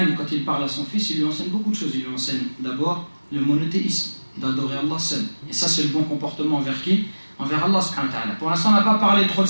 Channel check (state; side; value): inverted; both; correlation -1.00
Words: quand il parle à son fils, il lui enseigne beaucoup de choses. Il lui enseigne d'abord le monothéisme, d'adorer Allah seul. Et ça, c'est le bon comportement envers qui? Envers Allah subhanahu wa ta'ala. Pour l'instant, on n'a pas parlé trop de